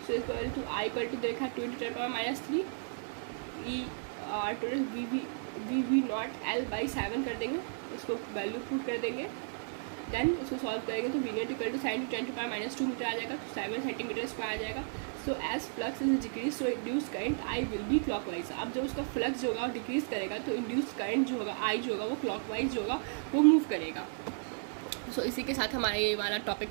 So equal to I equal to देखा 2 × 10⁻³ E/R टोटल V0 L/7 कर देंगे, इसको वैल्यू पुट कर देंगे, देन इसको सॉल्व करेंगे तो V0 equal to sin 10⁻² metre आ जाएगा, तो 7 सेंटीमीटर स्क्वायर आ जाएगा। So as flux is decrease so induced current I will be clockwise. अब जब उसका फ्लक्स जो होगा वो डिक्रीज करेगा तो इंड्यूस्ड करंट जो होगा I जो होगा वो क्लॉकवाइज जो होगा वो मूव करेगा। सो इसी के साथ हमारा ये वाला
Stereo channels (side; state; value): left; silent; digital silence